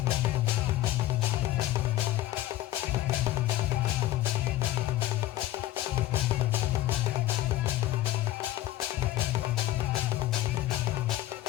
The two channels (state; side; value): quieter; right; 14.9 dB